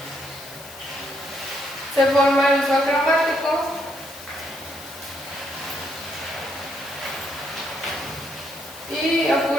Se forma el uso cromático. Y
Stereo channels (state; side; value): noise; left; hiss, 17 dB below the sound